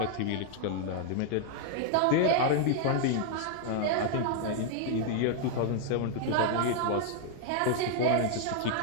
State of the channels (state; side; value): different; both; correlation 0.00